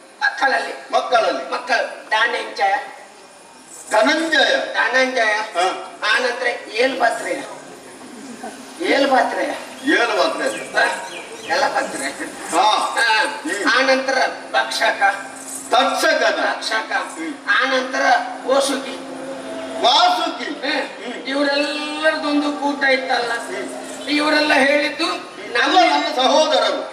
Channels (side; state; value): both; identical; correlation 1.00